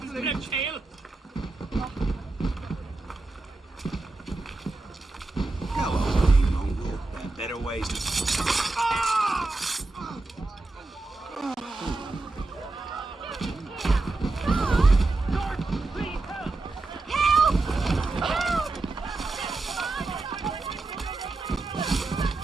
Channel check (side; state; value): left; quieter; 3.3 dB